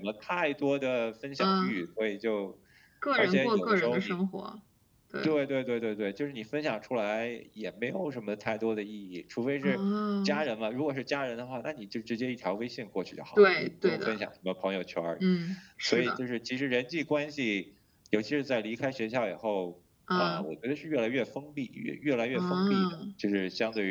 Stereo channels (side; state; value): both; identical; correlation 1.00